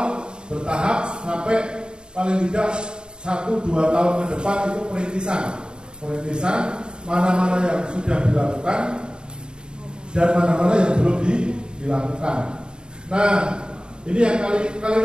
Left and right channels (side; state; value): left; late; 0.049 ms